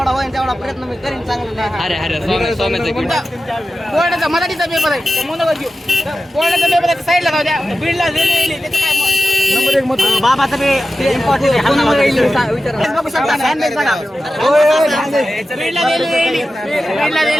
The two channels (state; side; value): normal; both; correlation 0.93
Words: होईल तेवढा प्रयत्न मी करीन चांगलं बोर्डाचा मराठीचा पेपर आहे मनोगत घेऊ बोर्डाचा पेपर आहे साईडला जाऊ द्या बीडला रेल्वे त्याचं काय नंबर 1 मत बाबाचं ते इम्पॉर्टंट